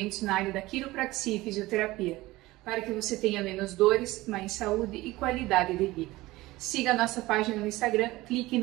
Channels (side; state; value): left; quieter; 19.0 dB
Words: na área da quiropraxia e fisioterapia, para que você tenha menos dores, mais saúde e qualidade de vida. Siga a nossa página no Instagram, clique